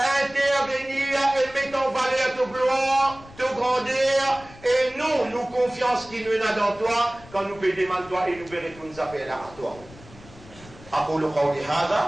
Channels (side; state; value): left; noise; rumble, 21 dB below the sound